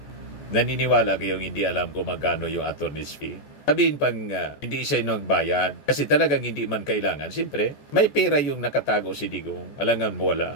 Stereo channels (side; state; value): right; late; 14 ms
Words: Naniniwala kayong hindi alam kung magkano yung attorney's fee? Sabihin pang hindi siya nagbayad kasi talagang hindi man kailangan. Siyempre, may pera yung nakatago si Digong. Alangan mo